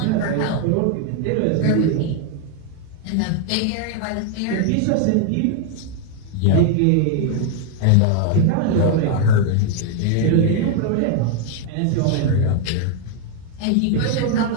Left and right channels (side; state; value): both; different; correlation 0.00